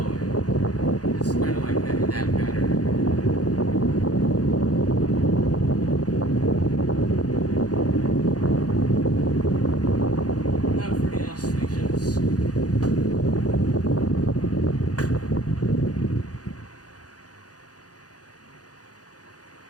It's kind of like that in that pattern. Now for the oscillations.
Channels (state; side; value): late; right; 0.68 ms